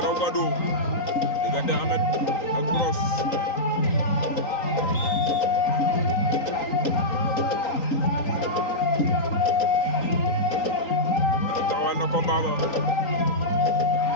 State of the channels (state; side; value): late; right; 3.9 ms